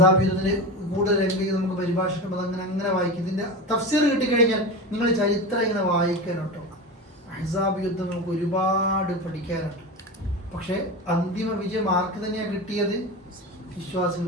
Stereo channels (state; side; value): normal; both; correlation 0.25